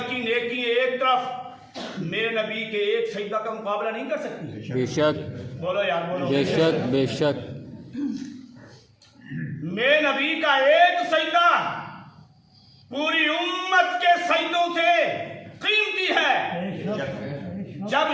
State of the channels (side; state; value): both; identical; correlation 1.00